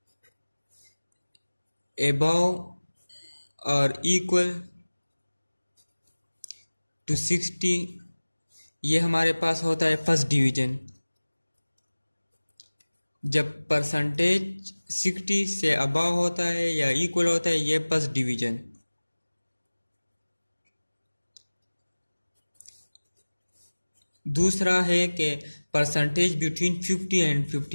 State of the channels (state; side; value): inverted; both; correlation -1.00